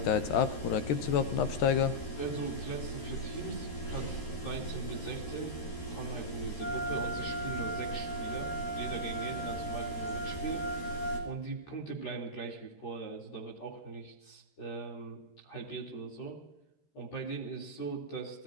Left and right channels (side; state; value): right; late; 13 ms